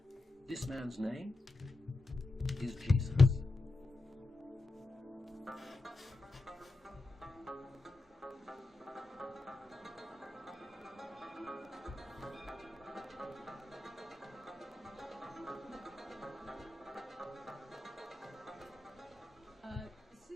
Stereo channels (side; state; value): right; quieter; 3.2 dB